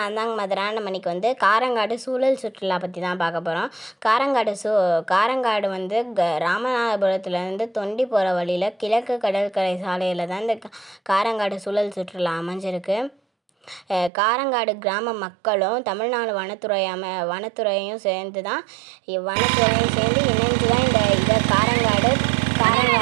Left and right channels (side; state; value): left; drops out; at 14.1 s